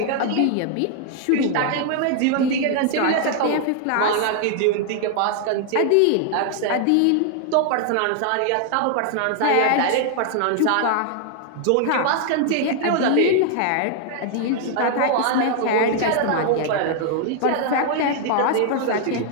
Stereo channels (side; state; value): both; different; correlation 0.00